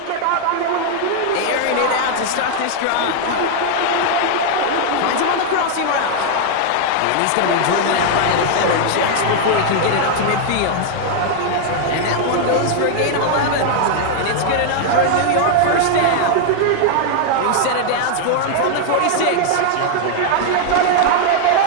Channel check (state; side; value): different; both; correlation 0.00